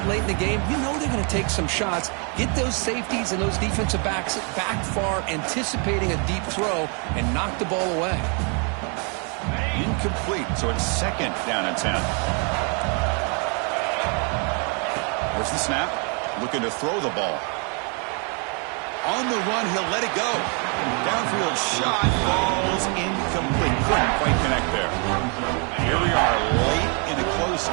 late in the game, you know they're going to take some shots. Get those safeties and those defensive backs back far, anticipating a deep throw, and knock the ball away. Incomplete, so it's 2nd down and 10. Where's the snap? Looking to throw the ball. On the run, he'll let it go. Downfield shot falls incomplete. Couldn't quite connect there. Here we are late in a close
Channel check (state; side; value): quieter; left; 36.9 dB